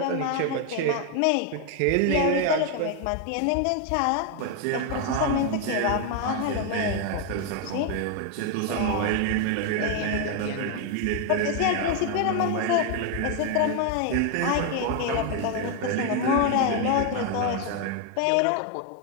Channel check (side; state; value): both; different; correlation 0.01